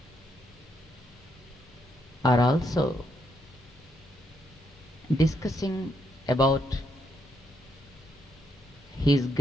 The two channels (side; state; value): both; normal; correlation 0.77